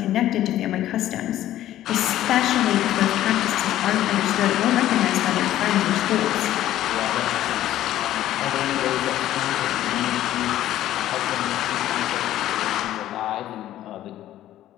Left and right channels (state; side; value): quieter; right; 13.2 dB